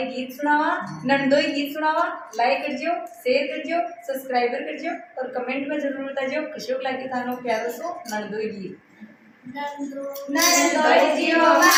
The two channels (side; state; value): both; identical; correlation 1.00